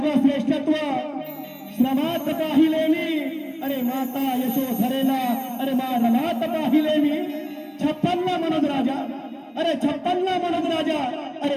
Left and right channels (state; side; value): identical; both; correlation 1.00